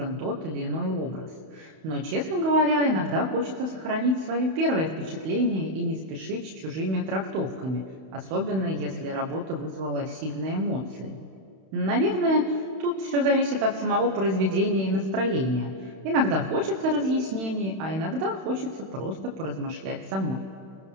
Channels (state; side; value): late; left; 31 ms